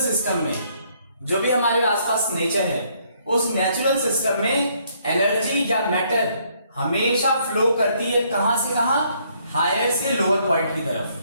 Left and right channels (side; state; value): both; inverted; correlation -0.68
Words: सिस्टम में जो भी हमारे आसपास नेचर है उस नेचुरल सिस्टम में एनर्जी या मैटर हमेशा फ्लो करती है कहां से कहां, हायर से लोअर पॉइंट की तरफ।